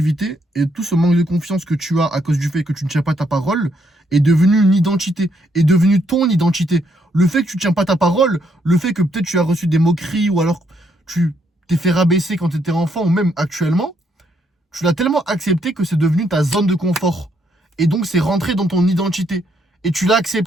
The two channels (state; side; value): normal; both; correlation 0.74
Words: et tout ce manque de confiance que tu as à cause du fait que tu ne tiens pas ta parole est devenu une identité, est devenu ton identité. Le fait que tu ne tiens pas ta parole, le fait que peut-être tu as reçu des moqueries ou alors tu t'es fait rabaisser quand tu étais enfant ou même actuellement, tu l'as tellement accepté que c'est devenu ta zone de confort. Et donc c'est rentré dans ton identité. Et tu l'as